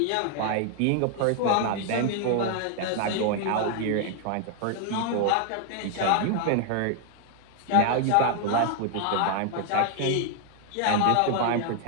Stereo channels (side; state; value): both; different; correlation 0.00